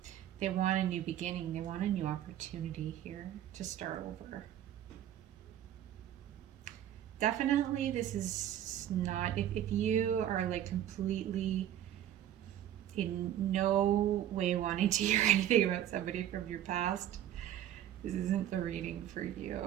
They want a new beginning. They want a new opportunity here to start over. Definitely, this is not, if you are like completely in no way wanting to hear anything about somebody from your past, this isn't the reading for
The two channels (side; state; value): left; quieter; 11.4 dB